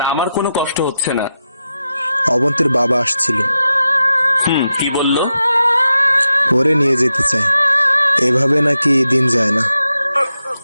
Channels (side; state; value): both; inverted; correlation -0.89